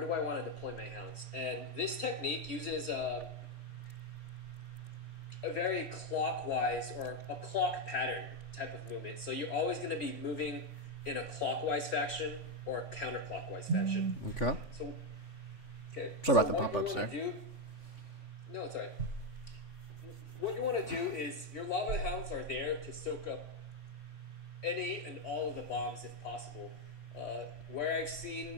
want to deploy my hounds? And this technique uses a very clockwise or a clock pattern type of movement. So you're always going to be moving in a clockwise fashion or a counterclockwise fashion. Okay. Okay. Sorry about the pop-ups there. No, it's all right. What you want to do is your lava hounds are there to soak up any and all of the bombs if possible. Where I've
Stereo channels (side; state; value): right; late; 3.5 ms